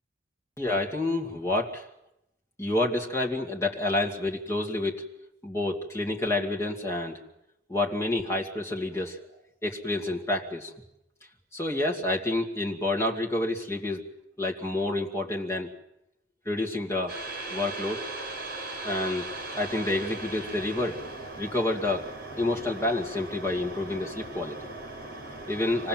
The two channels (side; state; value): both; normal; correlation 0.51